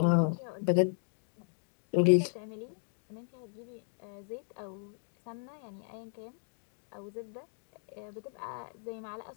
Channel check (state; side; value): silent; right; 54 dB below the other